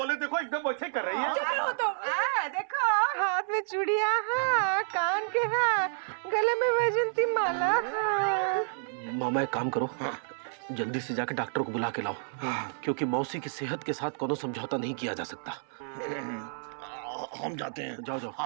देखो एकदम वैसे कर रही है। चुप रहो तुम। देखो हाथ में चूड़ियां हैं, कान के हैं, गले में वैजंती माला। मामा एक काम करो, जल्दी से जाके डॉक्टर को बुला के लाओ, क्योंकि मौसी की सेहत के साथ कोनो समझौता नहीं किया जा सकता। हम जाते हैं। जाओ जाओ।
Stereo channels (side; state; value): left; silent; 58 dB below the other